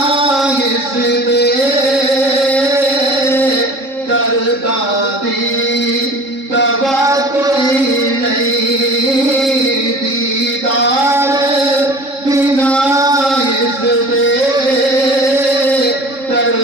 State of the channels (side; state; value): left; late; 3.7 ms